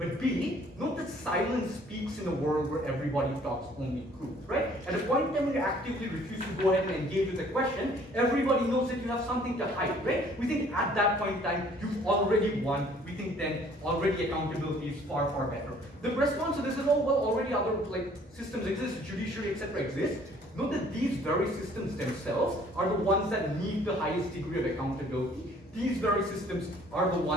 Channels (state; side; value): normal; both; correlation 0.57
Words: B, note that silence speaks in a world where everybody talks only truth, right? At a point in time when you actively refuse to go ahead and engage with a question, everybody knows that you have something to hide, right? We think at that point in time, you've already won. We think then already accountability is far, far better. The response to this is, oh, well, already other like systems exist, judiciary, etc. exist. Note that these very systems themselves are the ones that need the highest degree of accountability. These very systems are the